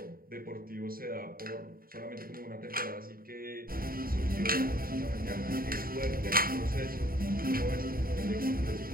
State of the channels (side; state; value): left; late; 0.42 ms